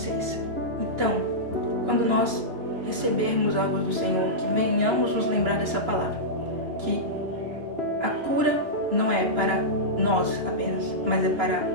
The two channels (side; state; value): left; late; 3.0 ms